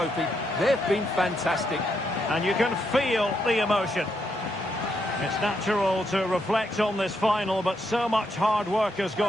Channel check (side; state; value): both; normal; correlation 0.79